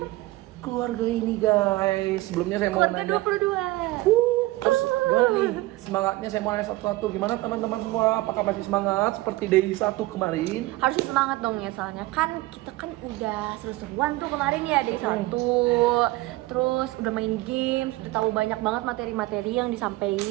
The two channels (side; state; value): left; quieter; 19.2 dB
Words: keluarga ini, guys. Sebelumnya saya mau Keluarga nanya. 22. Terus gimana nih semangatnya, saya mau nanya satu-satu. Gimana teman-teman semua? Apakah masih semangat seperti day 1 kemarin? Harusnya semangat dong ya, soalnya kan kita kan udah seru-seruan tuh kemarin ya day 1. Terus udah main games, udah tahu banyak banget materi-materi yang